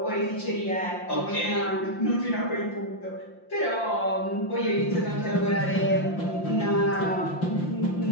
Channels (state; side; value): late; right; 5.7 ms